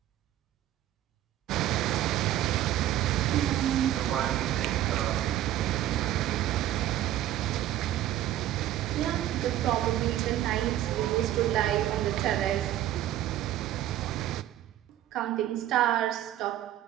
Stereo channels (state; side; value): quieter; left; 12.9 dB